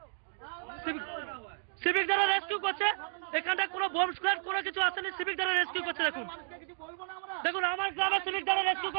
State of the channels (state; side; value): silent; left; digital silence